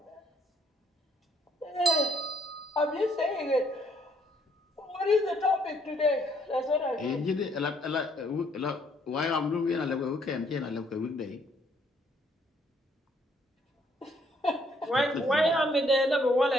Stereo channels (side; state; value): both; normal; correlation 0.67